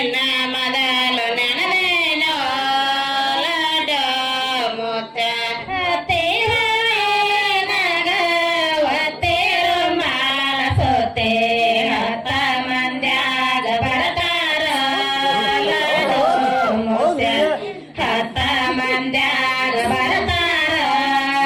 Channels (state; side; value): identical; both; correlation 1.00